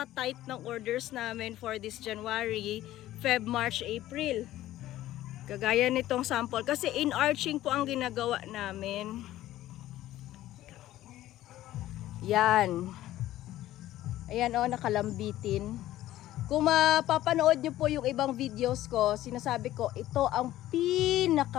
ng orders namin for this January, Feb, March, April. Kagaya nitong sample. Kasi in-arching po ang ginagawa namin. Yan. Ayan o, nakalambitin. Kung mapapanood nyo po yung ibang videos ko, sinasabi ko, ito ang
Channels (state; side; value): quieter; right; 14.5 dB